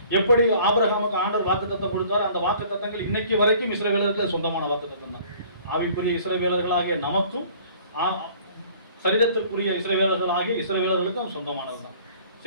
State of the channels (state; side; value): inverted; both; correlation -0.53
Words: எப்படி ஆபிரகாமுக்கு ஆண்டவர் வாக்கு தத்தம் கொடுத்தார், அந்த வாக்கு தத்தங்கள் இன்னைக்கு வரைக்கும் இஸ்ரவேலர்களுக்கு சொந்தமான வாக்கு தத்தம் தான். ஆவிக்குரிய இஸ்ரவேலர்களாகிய நமக்கும் சரீரத்திற்குரிய இஸ்ரவேலர்களாகிய இஸ்ரவேலர்களுக்கும் சொந்தமானது தான்.